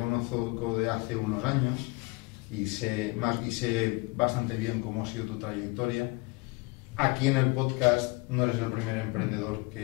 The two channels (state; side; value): quieter; right; 26.1 dB